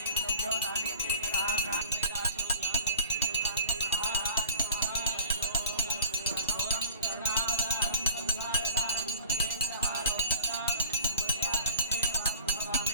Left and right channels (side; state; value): both; inverted; correlation -0.45